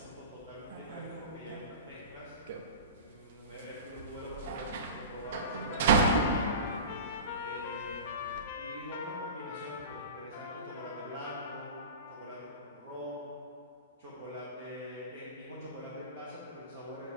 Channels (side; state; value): both; inverted; correlation -0.32